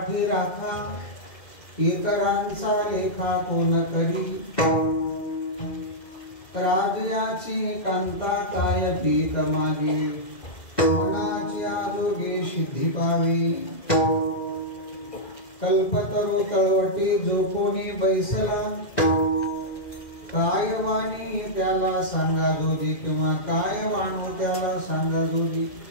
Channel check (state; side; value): late; right; 2.1 ms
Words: राखा, इतरांचा लेखा कोण करी, राजयाची कांता काय पीत मागे, मनाची आरोग्य सिद्धी पावे, कल्पतरू तळवटी जो कोणी बैसला, काय वाणी त्याला सांगा जोजी, किंवा काय वाणू त्याला सांगा जोजी,